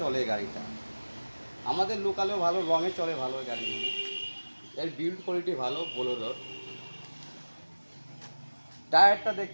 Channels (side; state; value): both; inverted; correlation -1.00